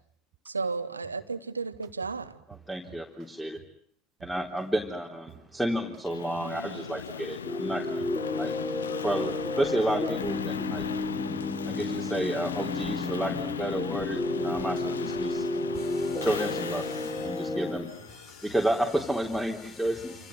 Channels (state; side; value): normal; both; correlation 0.66